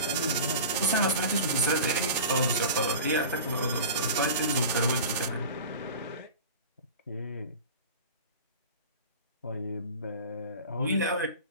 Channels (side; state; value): both; inverted; correlation -0.35